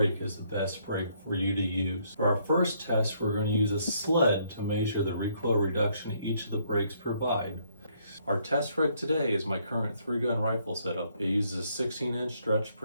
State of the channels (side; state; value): both; inverted; correlation -0.69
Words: is the best brake for you to use. For our first test, we're going to use a sled to measure the recoil reduction each of the brakes provide. Our test rig today is my current 3-gun rifle setup. It uses a 16-inch stretch